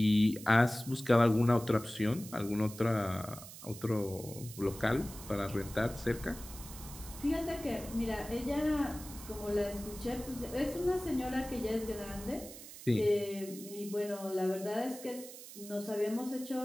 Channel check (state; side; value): noise; right; hiss, 14 dB below the sound